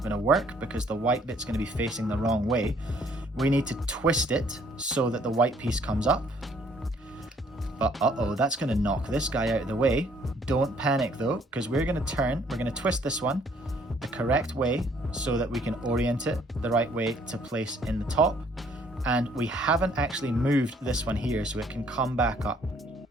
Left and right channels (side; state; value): both; normal; correlation 0.62